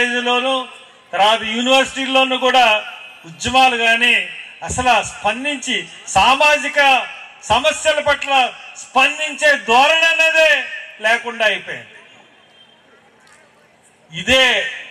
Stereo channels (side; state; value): both; identical; correlation 1.00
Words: తర్వాత యూనివర్సిటీల్లోనూ కూడా ఉద్యమాలు కానీ అసలు స్పందించి సామాజిక సమస్యల పట్ల స్పందించే ధోరణి అనేదే లేకుండా అయిపోయింది. ఇదే